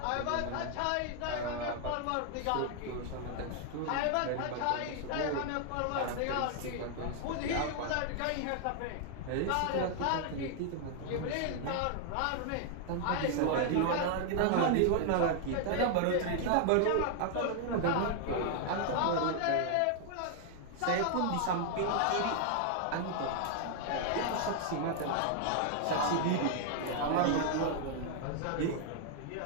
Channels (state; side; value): different; both; correlation 0.00